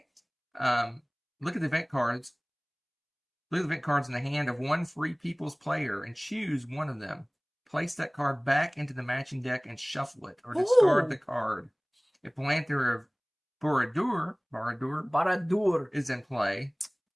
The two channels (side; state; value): both; identical; correlation 1.00